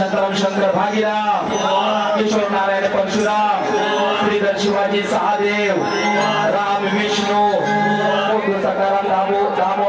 शंकर भागीराम किशोर नारायण परशुराम श्रीधर शिवाजी सहादेव राम विष्णू सकाराम दामो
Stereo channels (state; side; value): identical; both; correlation 1.00